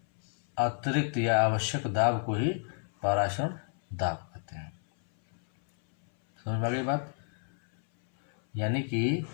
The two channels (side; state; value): right; silent; 58 dB below the other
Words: अतिरिक्त या आवश्यक दाब को ही परासरण दाब कहते हैं। समझ में आ गई बात? यानी कि